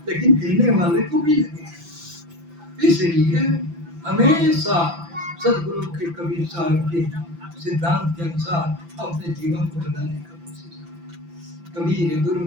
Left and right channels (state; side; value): late; left; 5.9 ms